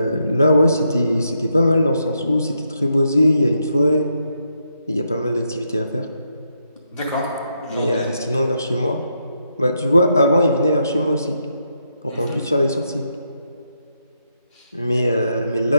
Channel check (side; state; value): both; inverted; correlation -0.79